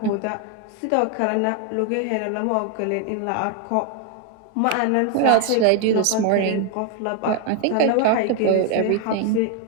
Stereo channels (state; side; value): different; both; correlation 0.01